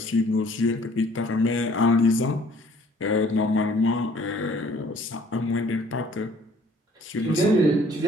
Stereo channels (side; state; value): both; normal; correlation 0.57